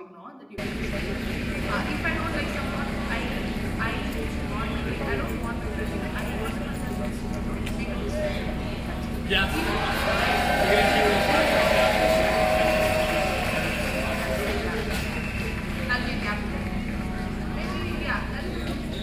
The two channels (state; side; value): identical; both; correlation 1.00